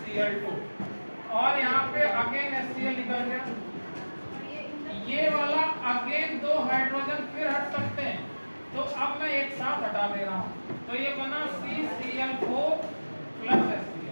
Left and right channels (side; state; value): both; inverted; correlation -1.00